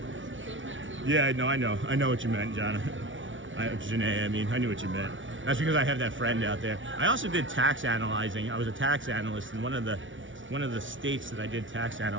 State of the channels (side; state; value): left; late; 0.56 ms